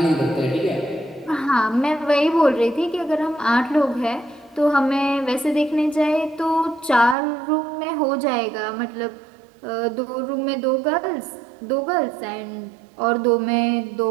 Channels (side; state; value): left; drops out; at 7.2 s